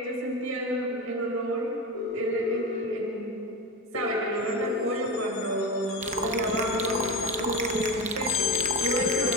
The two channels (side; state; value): both; normal; correlation 0.21